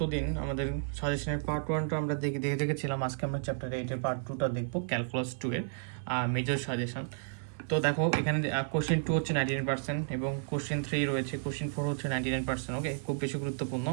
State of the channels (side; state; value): left; silent; 56 dB below the other